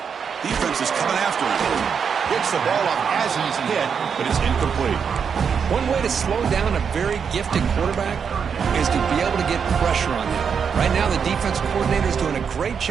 Defense is coming after him. Gets the ball up as he's hit, but it's incomplete. One way to slow down a very gifted quarterback is to be able to get pressure on him. Right now, the defensive coordinator is doing a great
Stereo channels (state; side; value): quieter; left; 6.7 dB